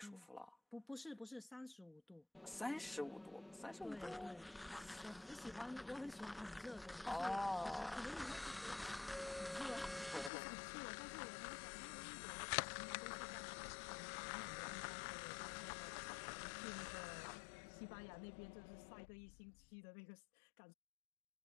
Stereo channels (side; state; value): right; drops out; at 10.3 s